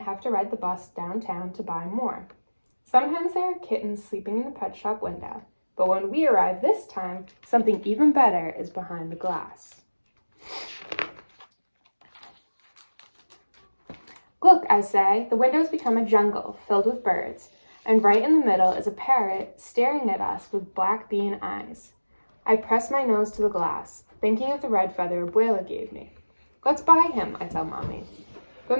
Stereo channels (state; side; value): inverted; both; correlation -1.00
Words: to ride the bus downtown to buy more. Sometimes there are kittens sleeping in the pet shop window, but when we arrive this time, something even better is behind the glass. Look, I say, the window's become a jungle filled with birds, and right in the middle is a parrot staring at us with black bean eyes. I press my nose to the glass, thinking of the red feather Abuela gave me. Let's buy him, I tell Mommy.